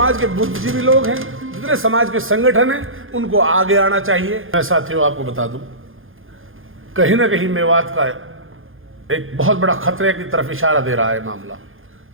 के बुद्धिजीवी लोग हैं, जितने समाज के संगठन हैं, उनको आगे आना चाहिए। मैं साथियों आपको बता दूं, कहीं ना कहीं मेवात का एक बहुत बड़ा खतरे की तरफ इशारा दे रहा है मामला।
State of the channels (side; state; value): left; late; 0.59 ms